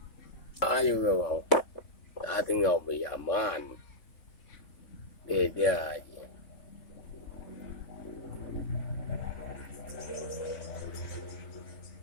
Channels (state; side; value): late; right; 3.6 ms